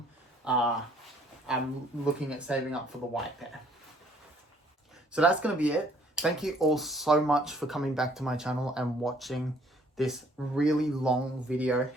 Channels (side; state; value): both; normal; correlation 0.61